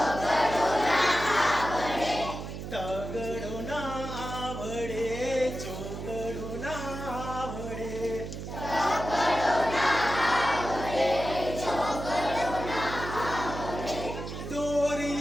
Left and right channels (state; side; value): noise; right; hum, 8 dB below the sound